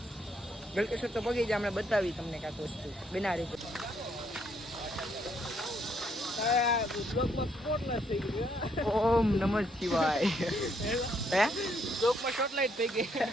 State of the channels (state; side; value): normal; both; correlation 0.72